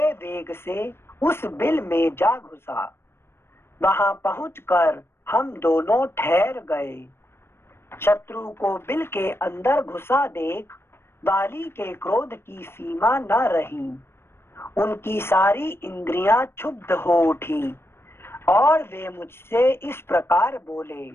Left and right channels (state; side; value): late; right; 0.12 ms